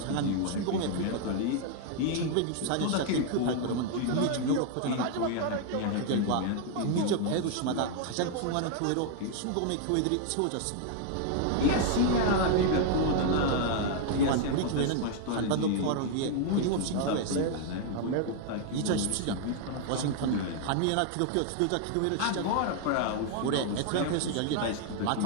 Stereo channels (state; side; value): different; both; correlation 0.00